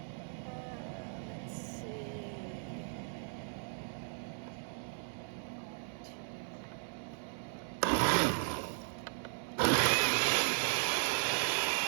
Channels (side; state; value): left; silent; digital silence